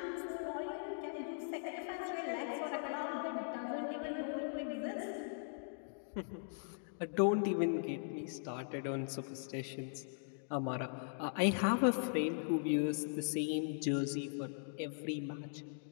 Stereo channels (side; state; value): right; silent; digital silence